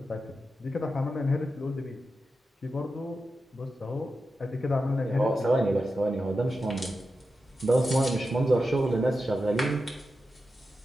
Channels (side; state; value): both; normal; correlation 0.90